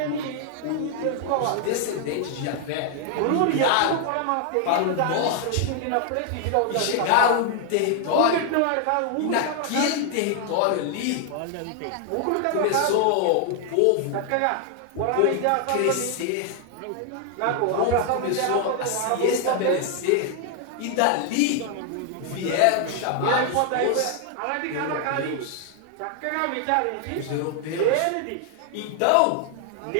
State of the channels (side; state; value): both; different; correlation 0.00